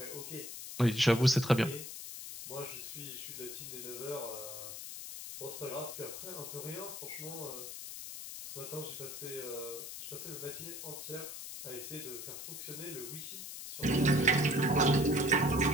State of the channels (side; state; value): left; noise; hiss, 9 dB below the sound